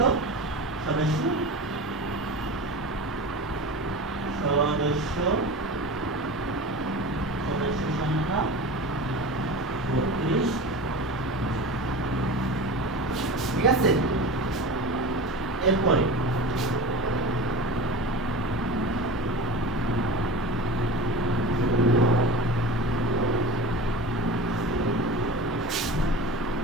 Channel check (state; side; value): normal; both; correlation 0.32